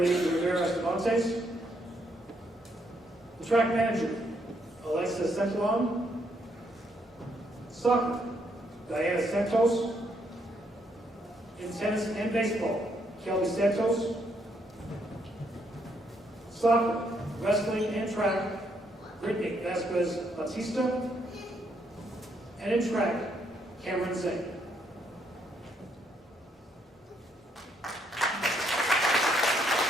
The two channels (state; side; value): normal; both; correlation 0.73